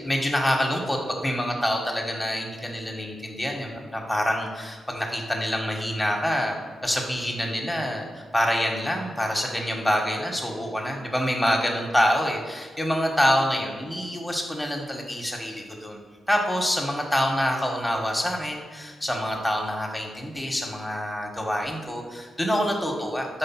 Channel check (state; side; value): normal; both; correlation 0.92